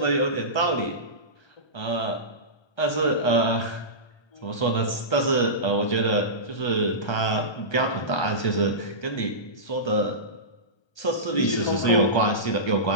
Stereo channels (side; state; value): right; late; 1.3 ms